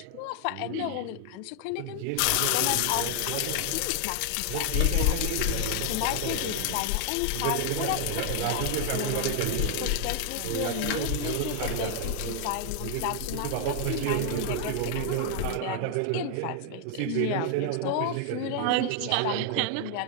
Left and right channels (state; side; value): different; both; correlation 0.00